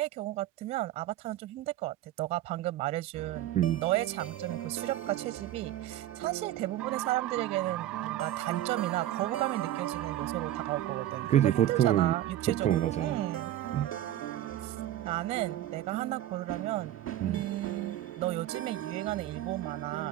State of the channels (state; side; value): quieter; left; 13.3 dB